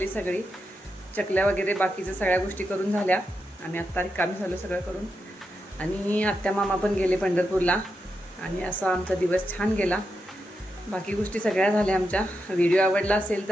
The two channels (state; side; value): normal; both; correlation 0.86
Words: सगळी. चकल्या वगैरे बाकीच्या सगळ्या गोष्टी करून झाल्या. आम्ही आत्ता रिकामी झालो सगळं करून. आणि आत्या मामा पण गेले पंढरपूरला. आणि असा आमचा दिवस छान गेला. बाकी गोष्टी सगळ्या झाल्या आमच्या. व्हिडिओ आवडला असेल